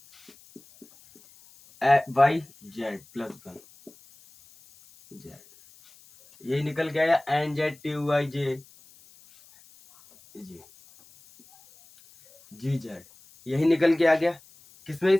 Y Z +1 Z. यही निकल के आया NZTUIJ GZ, यही निकल के आ गया। किसमें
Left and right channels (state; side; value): noise; left; hiss, 26 dB below the sound